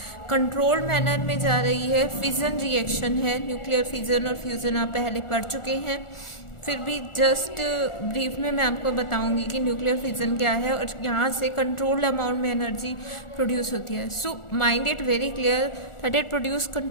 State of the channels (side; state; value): right; late; 1.4 ms